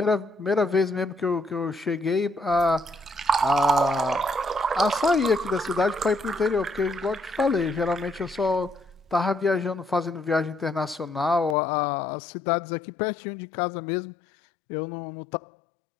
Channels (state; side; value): drops out; right; at 11.6 s